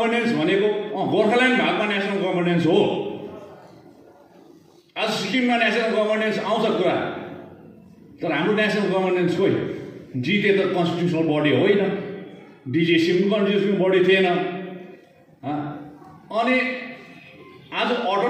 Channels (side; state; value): both; identical; correlation 1.00